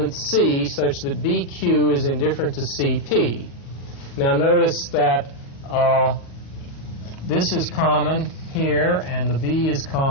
C such that BQ is indifferent to CP. Now notice that this is common here, and the B is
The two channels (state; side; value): late; right; 34 ms